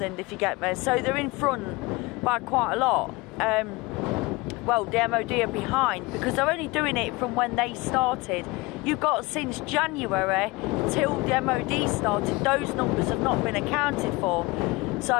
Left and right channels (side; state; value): right; quieter; 23.4 dB